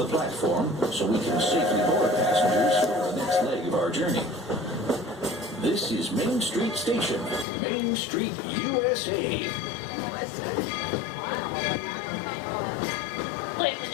platform so we can safely board passengers for the next leg of our journey. This is Main Street Station, Main Street, USA. Ladies and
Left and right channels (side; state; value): right; drops out; at 7.5 s